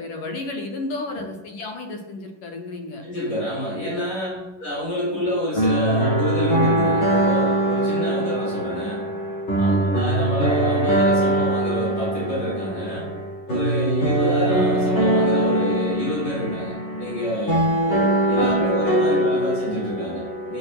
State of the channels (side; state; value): right; late; 11 ms